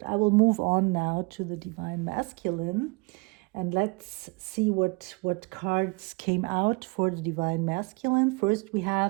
I will move on now to the divine masculine, and let's see what cards came out for the divine masculine. First, we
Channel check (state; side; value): quieter; left; 29.2 dB